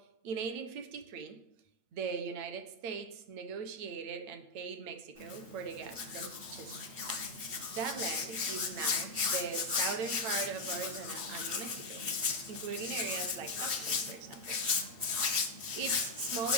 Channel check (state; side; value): late; left; 8.7 ms